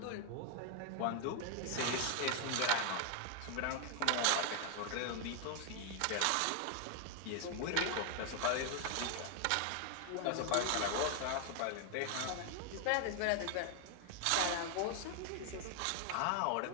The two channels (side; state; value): both; different; correlation 0.00